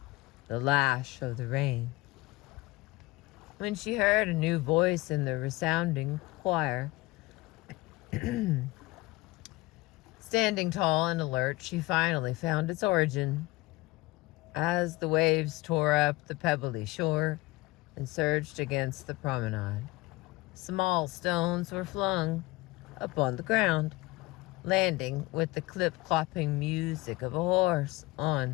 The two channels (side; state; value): right; quieter; 20.5 dB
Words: the lash of the rain. When she heard a new voice in the resounding choir, standing tall and alert, she finally found its origin. As the waves tore up the pebbly shore and surged against the promenade, small stones were flung upon the ground, landing with the clip-clopping music of a horse